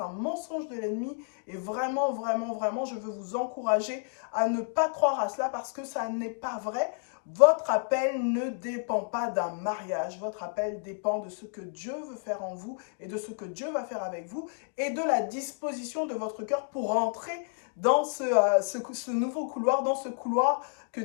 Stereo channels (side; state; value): right; silent; 58 dB below the other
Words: un mensonge de l'ennemi et vraiment, vraiment, vraiment, je veux vous encourager à ne pas croire à cela parce que ça n'est pas vrai. Votre appel ne dépend pas d'un mariage, votre appel dépend de ce que Dieu veut faire en vous et de ce que Dieu va faire avec vous et de la disposition de votre cœur pour entrer dans ce nouveau couloir, dans ce couloir que